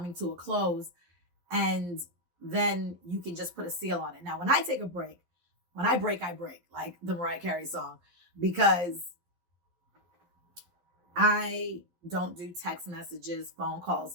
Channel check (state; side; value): late; left; 12 ms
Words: to a close. And then you can just put a seal on it. Now, when I take a break, when I break, like the Mariah Carey song, because I don't do text messages, phone